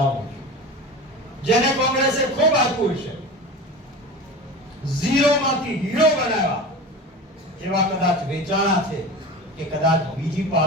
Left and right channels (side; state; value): both; normal; correlation 0.31